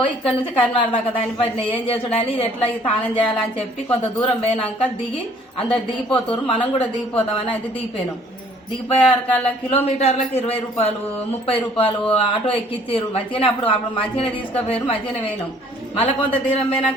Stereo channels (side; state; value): both; normal; correlation 0.58